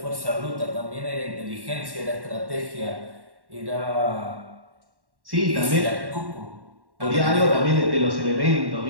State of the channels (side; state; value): left; late; 1.1 ms